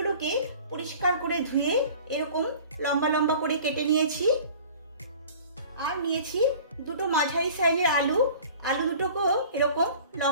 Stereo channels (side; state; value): both; inverted; correlation -0.45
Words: পরিষ্কার করে ধুয়ে এরকম লম্বা লম্বা করে কেটে নিয়েছি। আর নিয়েছি দুটো মাঝারি সাইজের আলু দুটোকেও এরকম